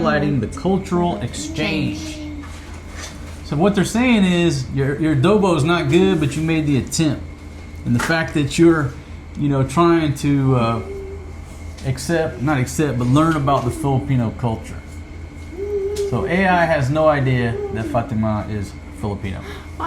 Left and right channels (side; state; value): both; identical; correlation 1.00